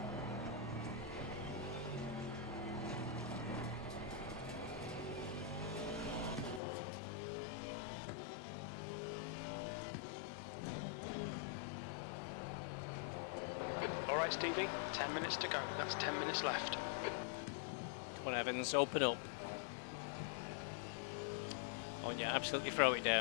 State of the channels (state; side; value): drops out; right; at 6.6 s